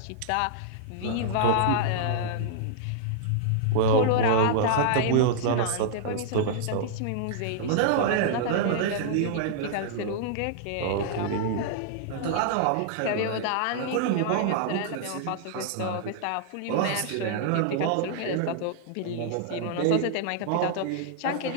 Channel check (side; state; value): both; different; correlation -0.01